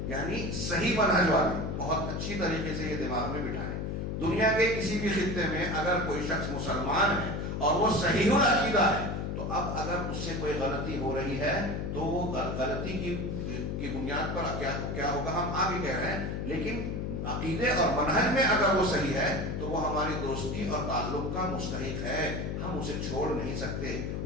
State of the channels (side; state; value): left; noise; hum, 3 dB below the sound